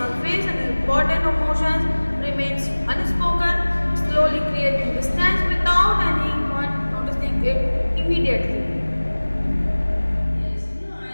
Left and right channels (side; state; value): both; inverted; correlation -1.00